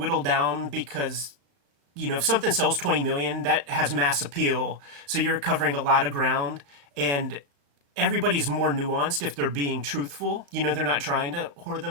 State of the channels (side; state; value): left; late; 35 ms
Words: down, because if something sells 20 million, that has mass appeal. So you're covering a lot of ground, and everybody's more nuanced if they're being truthful. They're not trying to whore